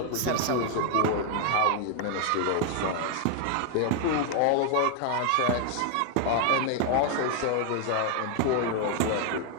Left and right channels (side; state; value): both; different; correlation 0.00